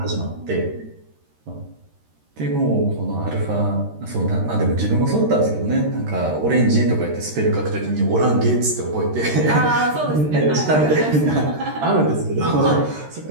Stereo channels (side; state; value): left; late; 13 ms